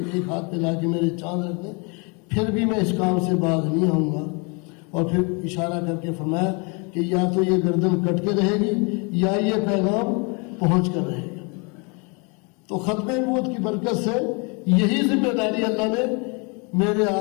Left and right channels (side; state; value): right; quieter; 32.6 dB